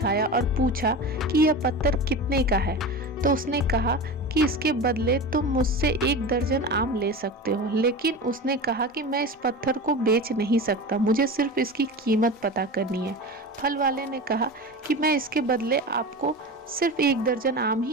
और पूछा कि यह पत्थर कितने का है। तो उसने कहा कि इसके बदले तुम मुझसे 1 दर्जन आम ले सकते हो। लेकिन उसने कहा कि मैं इस पत्थर को बेच नहीं सकता, मुझे सिर्फ इसकी कीमत पता करनी है। फल वाले ने कहा कि मैं इसके बदले आपको सिर्फ 1 दर्जन आम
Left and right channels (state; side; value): normal; both; correlation 0.28